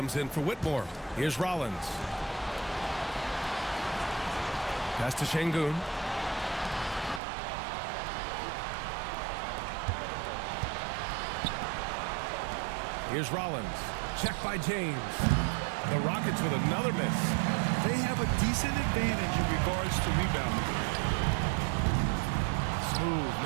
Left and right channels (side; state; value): left; drops out; at 7.2 s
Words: in for Whitmore. Here's Rollins. Pass to Şengün. Here's Rollins. Checked by James. The Rockets with another miss. They have a decent advantage in regards to rebounding. Smooth,